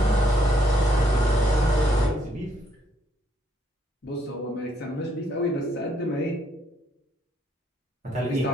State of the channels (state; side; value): normal; both; correlation 0.72